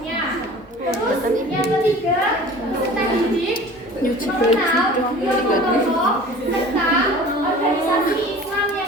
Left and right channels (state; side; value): normal; both; correlation 0.43